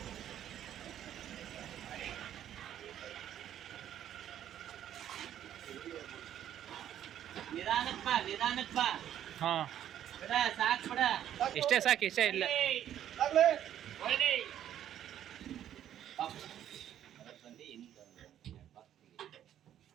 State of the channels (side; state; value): left; quieter; 10.9 dB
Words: ನಿಧಾನಕ್ಕೆ ಬಾ ಹಾಂ, ಬಿಡ ಸಾಕು ಬಿಡ ಇಷ್ಟೇ ಸಾಕು, ಇಷ್ಟೇ ಇಲ್ಲ.